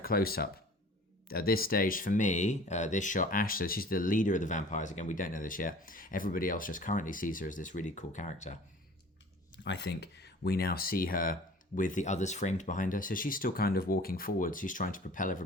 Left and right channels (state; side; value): normal; both; correlation 0.46